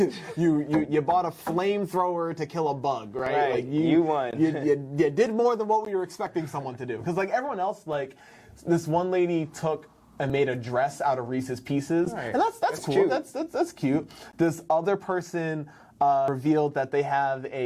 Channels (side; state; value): both; identical; correlation 1.00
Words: you bought a flamethrower to kill a bug, right? Like you won. you did more than what we were expecting someone to do. Because like everyone else, like this one lady took and made a dress out of Reese's Pieces. And that's cool. Cute. That's cute. This other person revealed that they have